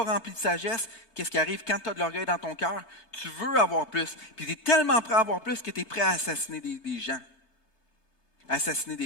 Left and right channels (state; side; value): late; right; 3.3 ms